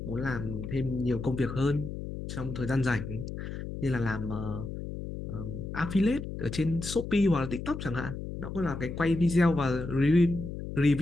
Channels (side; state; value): left; noise; hum, 7 dB below the sound